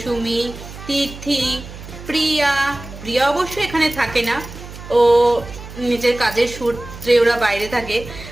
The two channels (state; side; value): noise; right; hum, 14 dB below the sound